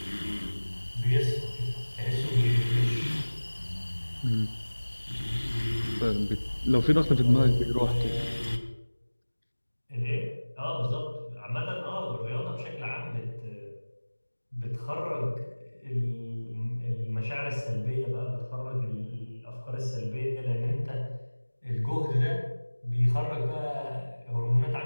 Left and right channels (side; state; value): both; inverted; correlation -1.00